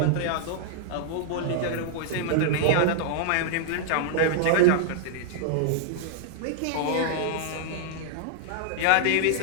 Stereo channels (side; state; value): both; different; correlation -0.01